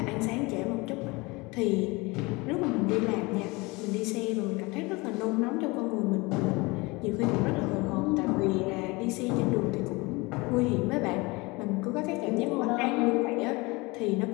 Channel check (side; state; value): right; quieter; 24.7 dB